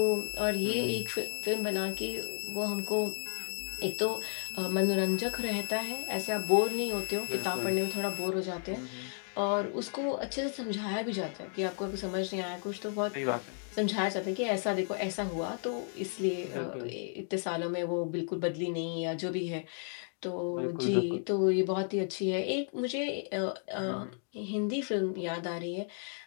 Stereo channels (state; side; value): silent; right; 56 dB below the other